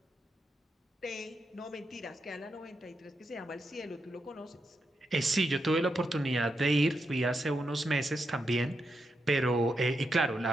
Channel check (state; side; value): normal; both; correlation 0.84